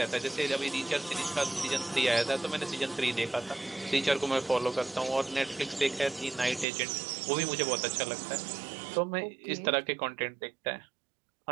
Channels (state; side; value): drops out; left; at 6.7 s